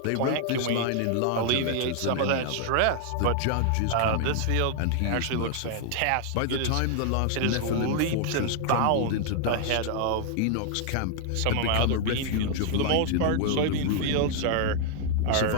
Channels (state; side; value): different; both; correlation 0.00